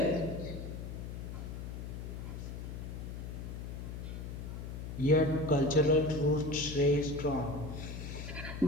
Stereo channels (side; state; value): left; noise; hum, 7 dB below the sound